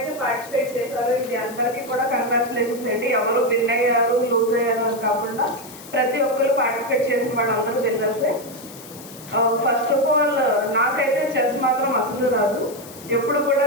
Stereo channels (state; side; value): noise; left; hiss, 17 dB below the sound